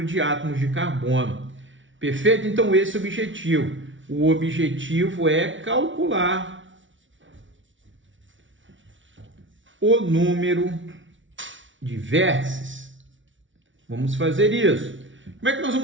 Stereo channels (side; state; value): left; late; 0.56 ms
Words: de átomos de carbono. Perfeito? Então esse é o objetivo. O objetivo é calcular o número de vértices. Vamos fazer isso. Como é que nós